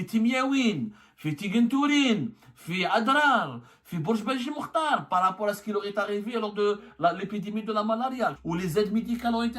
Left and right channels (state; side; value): identical; both; correlation 1.00